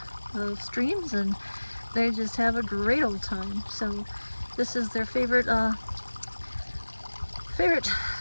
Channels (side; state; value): both; inverted; correlation -1.00